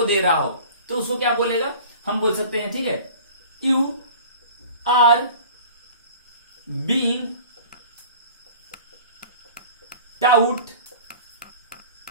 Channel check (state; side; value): inverted; both; correlation -0.43